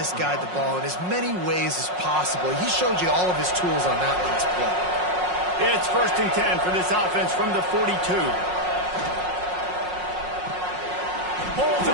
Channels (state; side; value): late; left; 5.5 ms